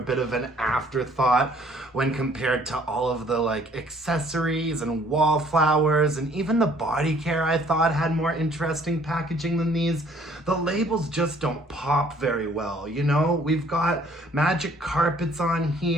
of an afterthought when compared to all of the accessories and wallflowers, and even the body care I thought had more interesting packaging than these. The labels just don't pop very well, you know? We've got magic carpets on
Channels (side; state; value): both; normal; correlation 0.59